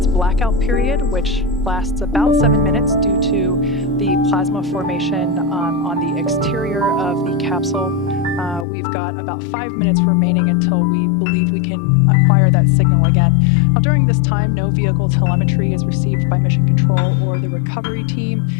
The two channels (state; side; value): drops out; right; at 8.7 s